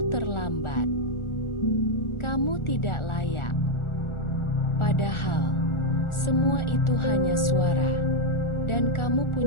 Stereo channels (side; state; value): right; late; 1.4 ms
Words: terlambat, kamu tidak layak." Padahal, semua itu hanya suara, dan kamu